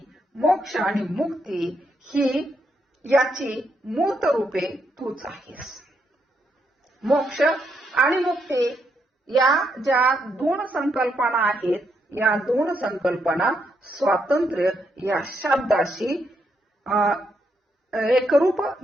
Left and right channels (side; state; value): both; normal; correlation 0.78